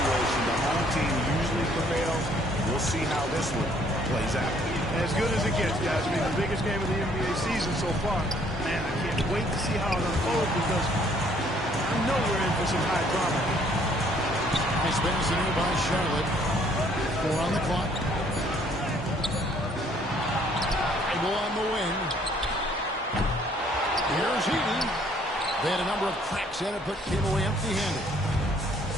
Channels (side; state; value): both; normal; correlation 0.62